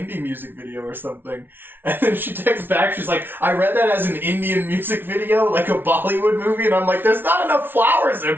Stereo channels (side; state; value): left; late; 0.10 ms